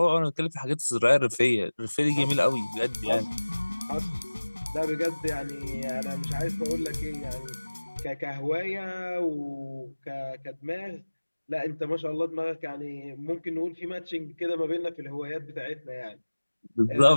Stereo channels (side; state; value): both; inverted; correlation -1.00